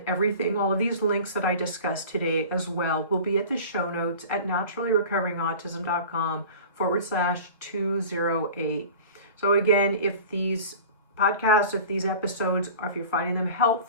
everything, all of these links that I discussed today as well will be at the show notes at naturallyrecoverinautism.com/208. So again, if these podcasts, if these episodes, or if you're finding them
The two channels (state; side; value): inverted; both; correlation -0.39